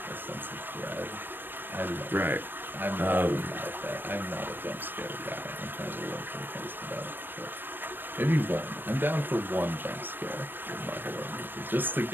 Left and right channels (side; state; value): left; late; 0.095 ms